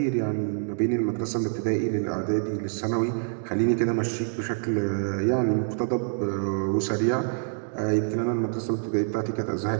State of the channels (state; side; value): silent; left; digital silence